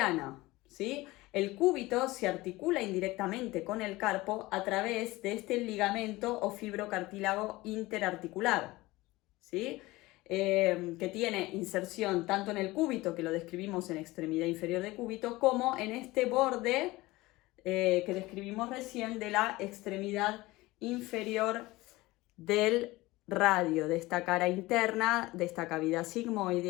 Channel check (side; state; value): right; quieter; 19.9 dB